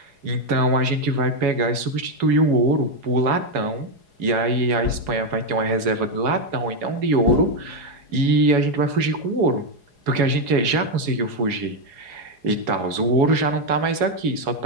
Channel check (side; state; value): left; late; 4.8 ms